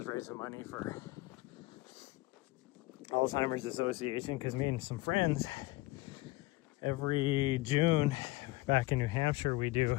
raising money for Alzheimer's Association, because me and some friends, every June back in New Hampshire, we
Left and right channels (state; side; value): quieter; right; 20.4 dB